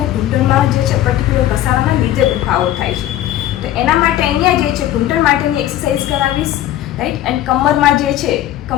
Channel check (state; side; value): quieter; right; 13.0 dB